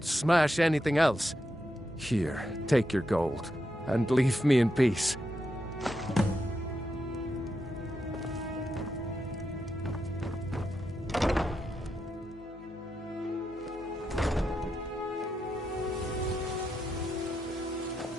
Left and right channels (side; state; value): both; normal; correlation 0.85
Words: smash anything else. Here, take your gold, and leave me in peace.